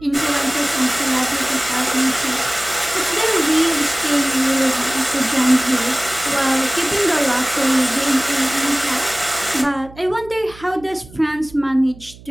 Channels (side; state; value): right; noise; hum, 20 dB below the sound